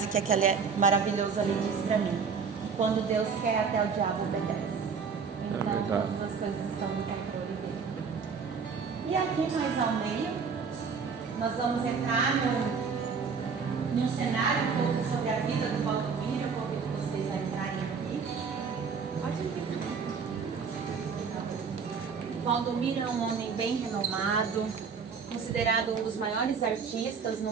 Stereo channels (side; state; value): left; quieter; 5.7 dB